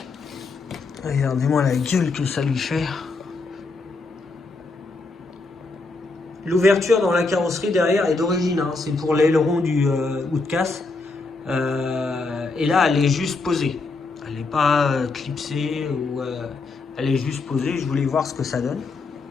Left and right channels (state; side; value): quieter; right; 3.7 dB